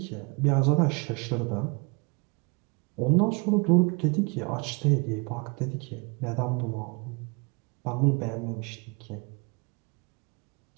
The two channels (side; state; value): left; quieter; 31.2 dB